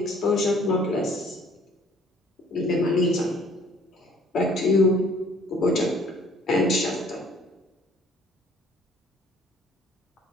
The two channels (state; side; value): normal; both; correlation 0.56